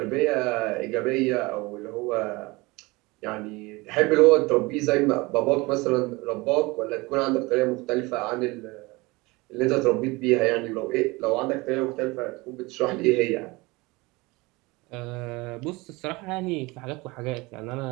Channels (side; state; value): left; quieter; 23.6 dB